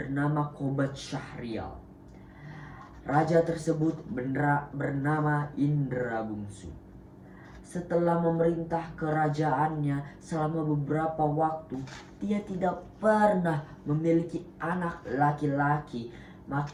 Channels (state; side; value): identical; both; correlation 1.00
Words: Qobat Syahrial. Raja tersebut bernama Indra Bungsu. Setelah memerintah kerajaannya selama beberapa waktu, dia tidak pernah memiliki anak laki-laki.